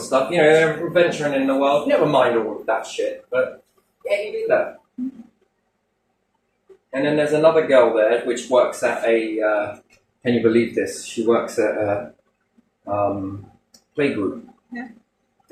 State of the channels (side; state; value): both; identical; correlation 1.00